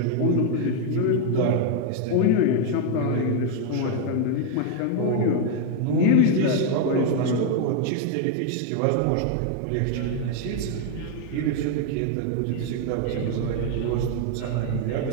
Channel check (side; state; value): both; different; correlation 0.01